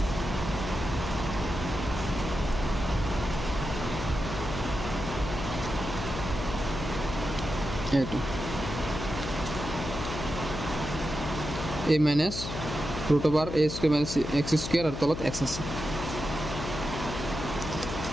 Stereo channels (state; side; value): noise; left; hum, 6 dB below the sound